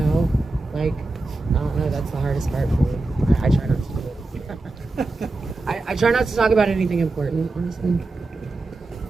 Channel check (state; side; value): quieter; left; 3.1 dB